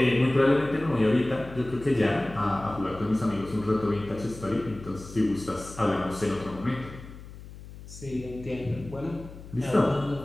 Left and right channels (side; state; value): left; noise; hum, 15 dB below the sound